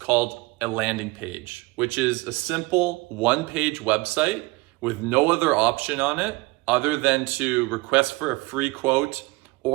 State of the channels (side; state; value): left; quieter; 22.8 dB